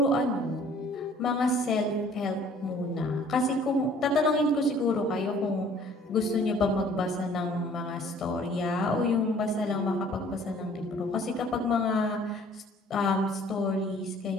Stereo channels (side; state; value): both; normal; correlation 0.55